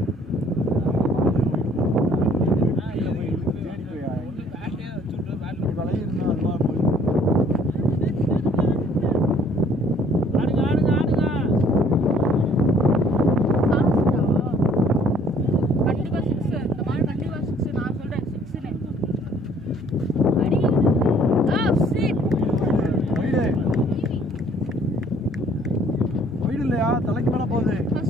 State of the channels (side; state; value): both; normal; correlation 0.59